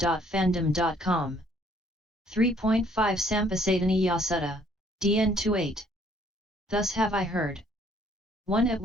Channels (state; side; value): normal; both; correlation 0.63